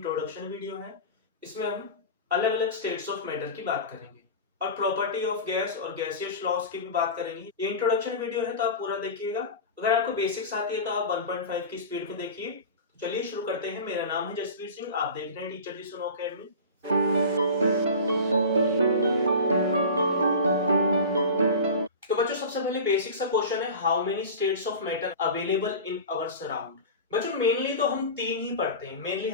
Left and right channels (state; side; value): inverted; both; correlation -0.30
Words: वीडियो है। इसमें हम अलग अलग स्टेट्स ऑफ मैटर की बात करेंगे और प्रॉपर्टी ऑफ गैस और गैसियस लॉज की भी बात करेंगे। ये इंट्रोडक्शन वीडियो है तो आप पूरा देखिएगा। अगर आपको बेसिक्स आती है तो आप 1.5 की स्पीड में देखिए। तो चलिए शुरू करते हैं। मेरा नाम है जसवीर सिंह, आप देख रहे हैं टीचर जी सुनो अकेडमी। तो बच्चों, सबसे पहले बेसिक सा क्वेश्चन है, how many states of matter available in our surround. बच्चों मेनली तो हम तीन ही पढ़ते हैं। मेनली